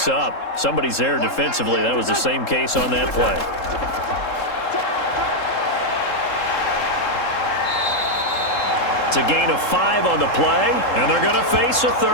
up, somebody's there defensively. That was the same case on that play. It's a gain of 5 on the play, and they're going to face a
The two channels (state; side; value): late; right; 3.7 ms